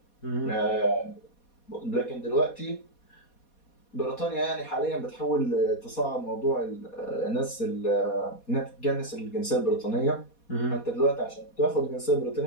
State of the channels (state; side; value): late; right; 4.2 ms